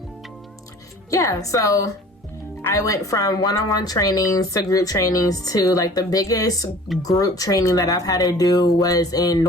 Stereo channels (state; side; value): normal; both; correlation 0.47